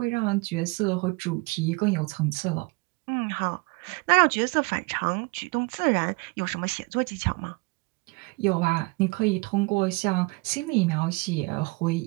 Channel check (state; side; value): quieter; left; 27.6 dB